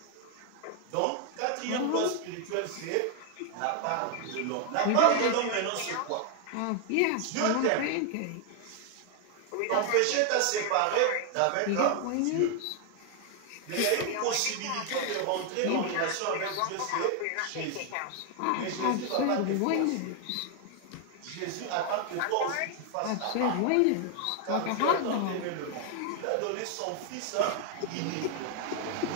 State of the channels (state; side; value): different; both; correlation 0.00